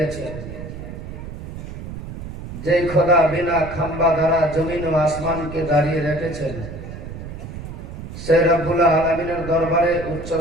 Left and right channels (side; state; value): right; noise; rumble, 10 dB below the sound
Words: যেই খোদা বিনা খাম্বা দ্বারা জমিন ও আসমানকে দাঁড়িয়ে রেখেছেন, সে রব্বুল আলামিনের দরবারে উচ্চ